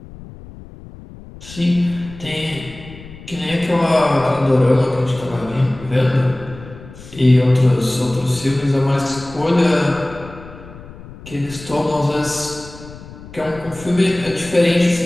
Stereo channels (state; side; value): noise; left; rumble, 17 dB below the sound